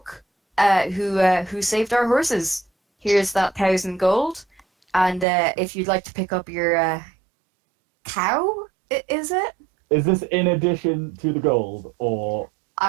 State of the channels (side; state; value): left; drops out; at 5.2 s